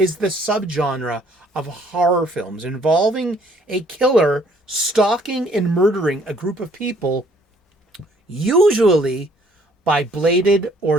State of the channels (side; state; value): both; normal; correlation 0.62